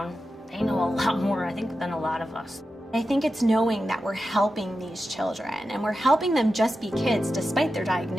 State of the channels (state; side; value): normal; both; correlation 0.91